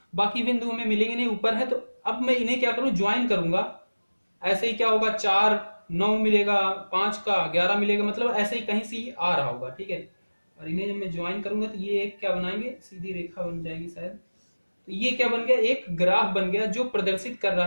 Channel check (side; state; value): both; inverted; correlation -1.00